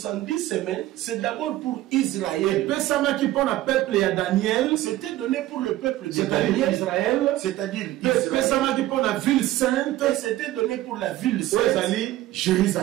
semaines c'est d'abord pour Israël. Et pesama qui pour le peuple et à Daniel, c'était donné pour le peuple de Daniel, Israël, c'est-à-dire pesama qui pour la ville sainte, et c'était donné pour la ville sainte,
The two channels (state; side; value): quieter; left; 15.4 dB